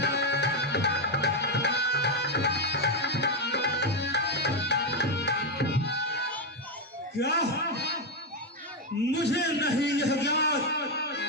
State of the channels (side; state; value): both; normal; correlation 0.05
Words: क्या मुझे नहीं यह ज्ञात